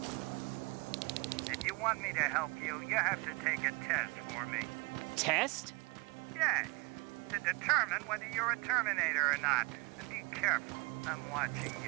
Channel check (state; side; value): quieter; left; 26.4 dB